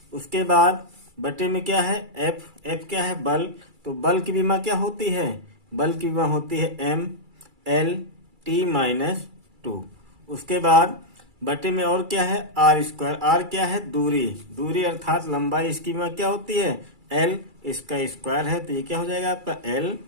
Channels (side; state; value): left; late; 2.3 ms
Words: उसके बाद बटे में क्या है F क्या है, बल, तो बल की विमा क्या होती है, बल की विमा होती है MLT-2। उसके बाद बटे में और क्या है R स्क्वायर, R क्या है, दूरी अर्थात लंबाई, इसकी विमा क्या होती है L, इसका स्क्वायर है, तो ये क्या हो जाएगा आपका